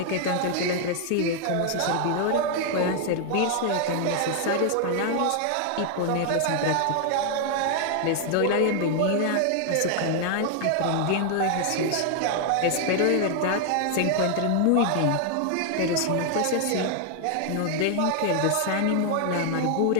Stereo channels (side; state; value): both; different; correlation 0.00